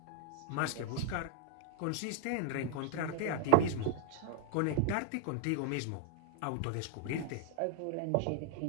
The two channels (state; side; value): different; both; correlation 0.00